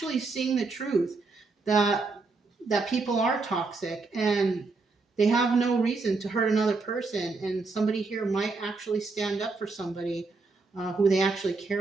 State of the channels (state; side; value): quieter; left; 3.9 dB